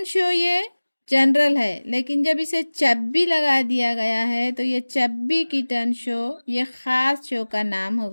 show ये जनरल है, लेकिन जब इसे चब्बी लगा दिया गया है तो ये चब्बी किटन शो ये ख़ास शो का नाम हो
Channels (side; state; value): both; inverted; correlation -1.00